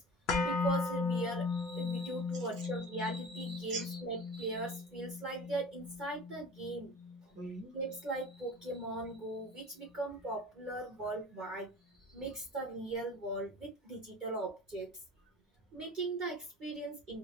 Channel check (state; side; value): normal; both; correlation 0.39